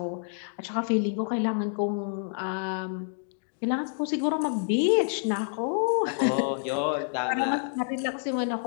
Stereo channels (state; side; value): silent; right; digital silence